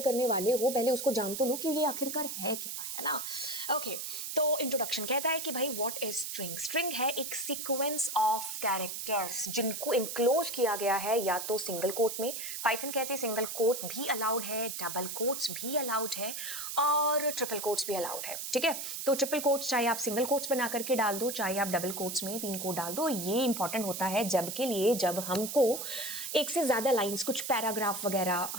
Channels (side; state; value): right; noise; hiss, 5 dB below the sound